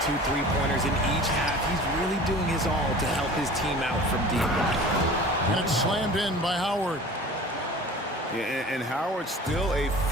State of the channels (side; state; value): both; normal; correlation 0.41